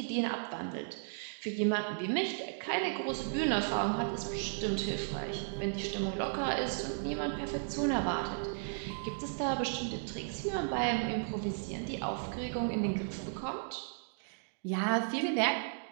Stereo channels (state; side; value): silent; left; digital silence